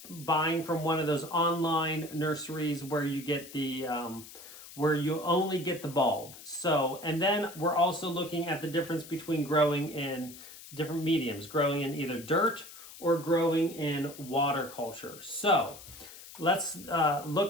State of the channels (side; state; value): left; noise; hiss, 16 dB below the sound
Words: buying from one of those online nurseries where you get where you only get the bulb. So, and then we're also looking at the difference between growing in different mediums, growing in either dirt or growing in water culture. So let's